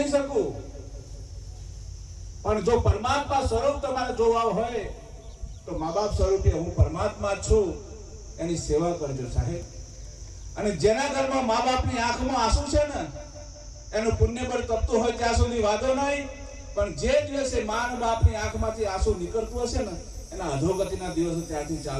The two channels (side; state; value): both; identical; correlation 1.00